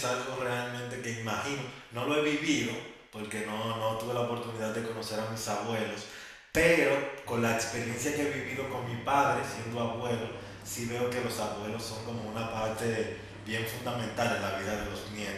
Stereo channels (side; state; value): both; identical; correlation 1.00